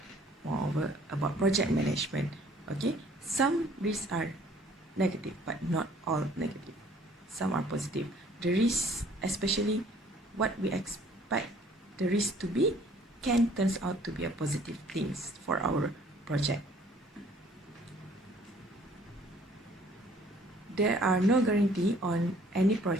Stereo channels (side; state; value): both; normal; correlation 0.57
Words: moreover about project management? Okay, some risks are negative, but not all negative. Some are positive. The risk, especially what we expect the risk to be, can turns out to be a positive things for our project. There are no guarantee on any